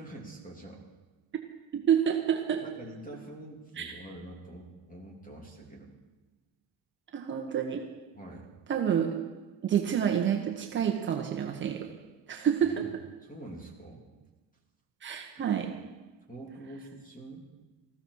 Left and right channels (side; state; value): left; quieter; 8.2 dB